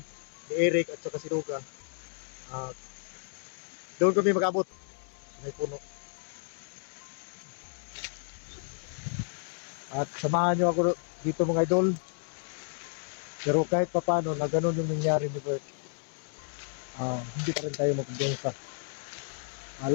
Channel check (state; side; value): silent; right; 57 dB below the other